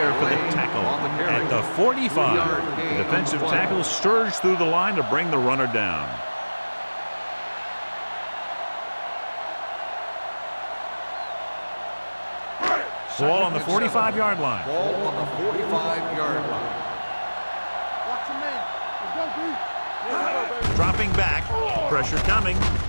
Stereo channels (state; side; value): inverted; both; correlation -1.00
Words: for the tackle at the 45. The defensive tackle surged through the line to bring the runner down. Ball on the 45-yard line. Ball on the 45-yard line. Watch your man. Let's go, B. Dropping back. Pressure coming.